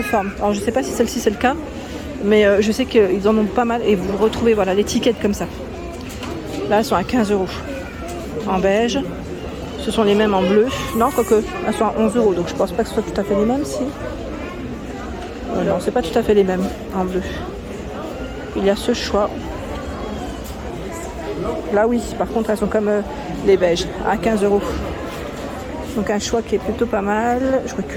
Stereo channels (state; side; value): identical; both; correlation 1.00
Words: forme. Alors je ne sais pas si celle-ci c'est le cas, mais je sais qu'ils en ont pas mal et vous retrouvez voilà, l'étiquette comme ça. Là, elles sont à 15 € en beige. Ce sont les mêmes en bleu. Non, quoique, elles sont à 11 €, donc je pense pas que ce soit tout à fait les mêmes, si. Non, c'est pas tout à fait les mêmes en bleu. Il y a ce choix. Là, oui, par contre, elles sont comme les beiges, à 15 €. Donc un choix qui est plutôt pas mal. Je